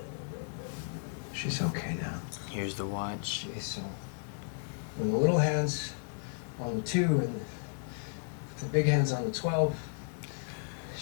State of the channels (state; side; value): silent; right; digital silence